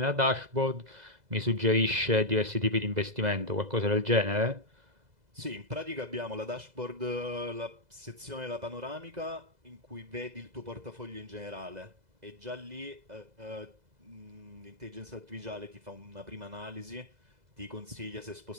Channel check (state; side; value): late; left; 2.0 ms